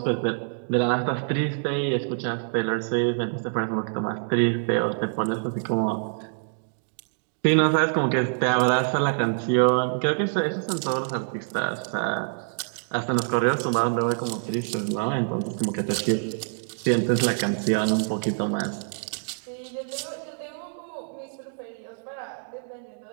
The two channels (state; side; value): silent; left; digital silence